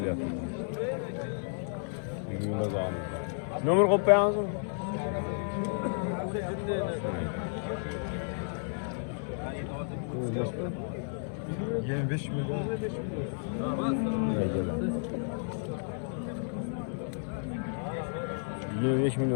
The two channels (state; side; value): silent; right; 56 dB below the other